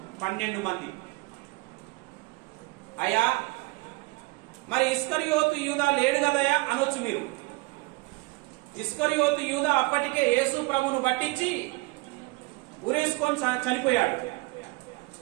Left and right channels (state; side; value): quieter; left; 24.2 dB